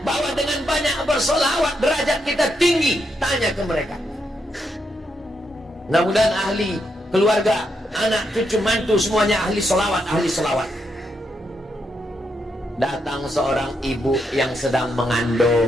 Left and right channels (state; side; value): normal; both; correlation 0.81